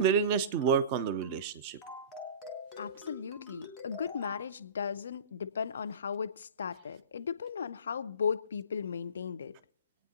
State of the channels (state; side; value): inverted; both; correlation -0.36